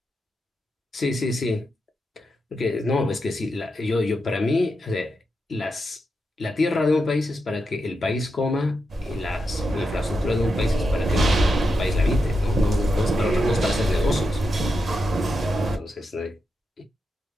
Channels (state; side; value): normal; both; correlation 0.86